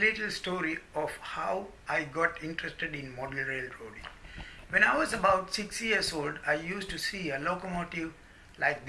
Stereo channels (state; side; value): identical; both; correlation 1.00